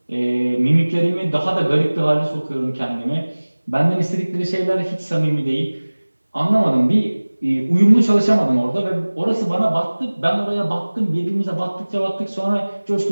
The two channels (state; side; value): inverted; both; correlation -1.00